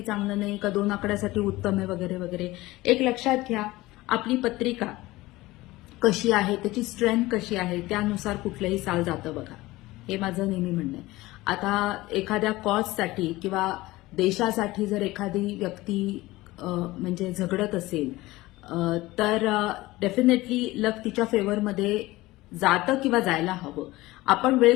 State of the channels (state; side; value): quieter; right; 19.1 dB